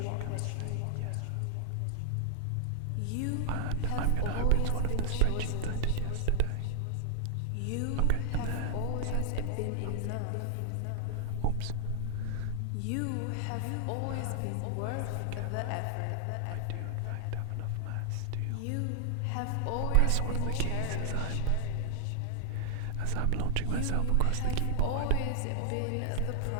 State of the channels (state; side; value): different; both; correlation -0.01